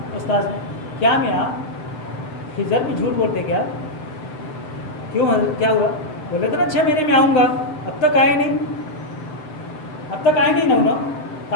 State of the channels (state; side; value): late; right; 7.8 ms